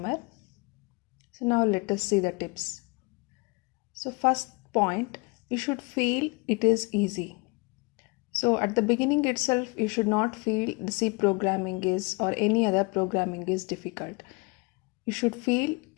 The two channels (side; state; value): right; quieter; 28.4 dB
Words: So now let us see the tips. So first point, you should feel it is easy. So at the beginning itself you should not feel the C programming is or any other programming is difficult. You should feel